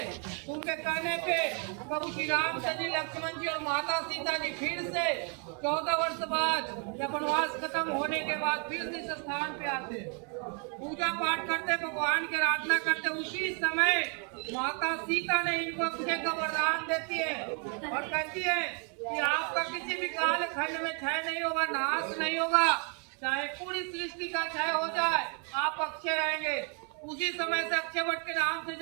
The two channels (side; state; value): left; quieter; 38.2 dB